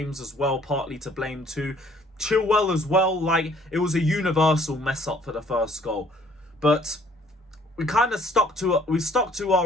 as well, partly to blame too. Chilwell as well, like it was a universal mess up for the first goal. But we kind of stuck to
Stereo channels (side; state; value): both; normal; correlation 0.60